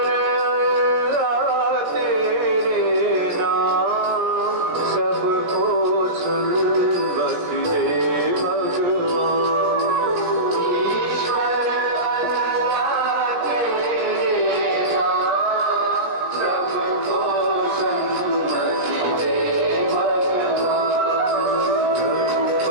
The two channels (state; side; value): late; left; 17 ms